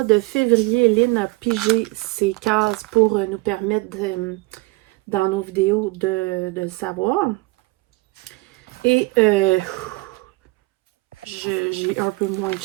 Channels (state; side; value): quieter; left; 24.0 dB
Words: de février, Lynn a pigé ses cases pour nous permettre dans nos vidéos de le savoir. Et j'ai un peu moins de